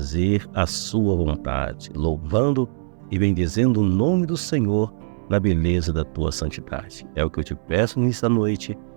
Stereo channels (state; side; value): silent; left; digital silence